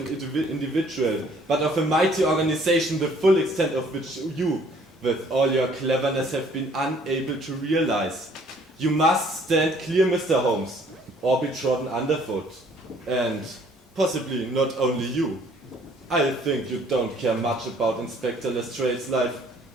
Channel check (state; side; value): normal; both; correlation 0.59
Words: individual, but of a mighty organization, the full extent of which you, with all your cleverness, have been unable to realize. You must stand clear, Mr. Holmes, or be trodden underfoot. And possibly not only you. I think you don't care much about Inspector Lestrade's life.